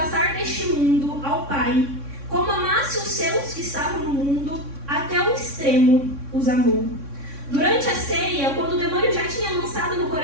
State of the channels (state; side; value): late; left; 3.6 ms